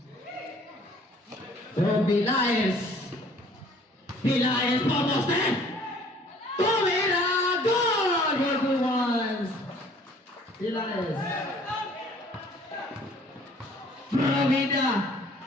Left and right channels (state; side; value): normal; both; correlation 0.55